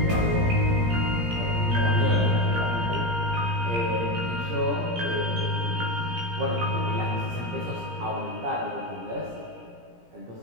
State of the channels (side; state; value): left; late; 17 ms